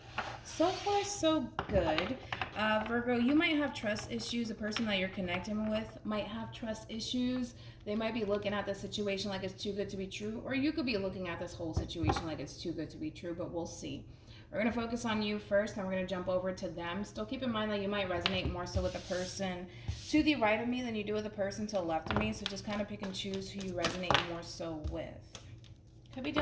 So far, so good. Virgo, you might have trust issues. The person that you're connecting with might have trust issues. They might be looking at the situation like it's too good to be true, or you could be looking at this whole situation like it's too good to be true, but we'll see. We're going to focus on you first, and we're going to jump over to them. Still keep in mind that you might resonate more so with the person to the right of me than you do with the person to the left of me, so just kind of pick and choose who you resonate more so with. Could be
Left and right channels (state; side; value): identical; both; correlation 1.00